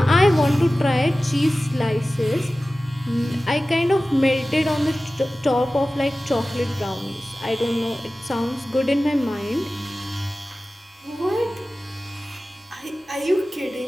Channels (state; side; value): normal; both; correlation 0.96